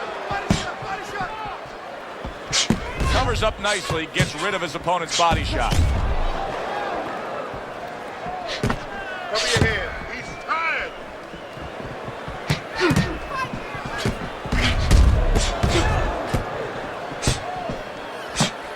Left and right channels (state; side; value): identical; both; correlation 1.00